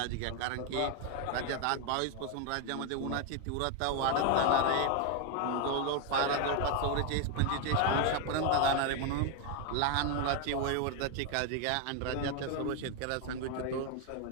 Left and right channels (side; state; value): both; different; correlation 0.01